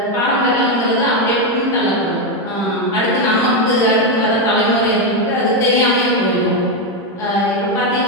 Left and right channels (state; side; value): normal; both; correlation 0.06